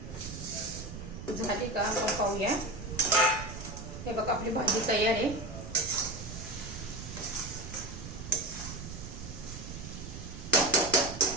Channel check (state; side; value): noise; right; rumble, 10 dB below the sound